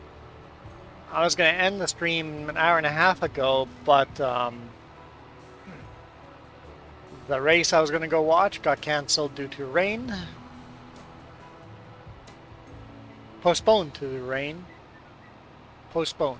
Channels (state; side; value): identical; both; correlation 1.00